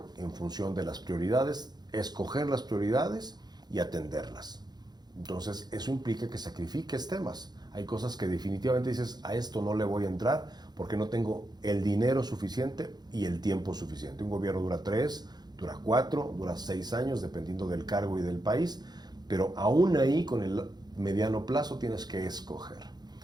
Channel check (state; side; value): late; left; 0.20 ms